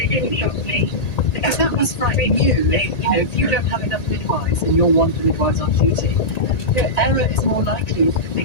didn't shock me. Because that must frighten you. If you don't have enough midwives and you're one of the midwives on duty, error is more likely if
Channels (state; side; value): late; right; 1.8 ms